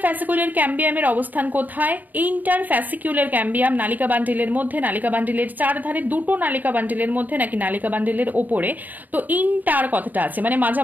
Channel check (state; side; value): late; left; 0.084 ms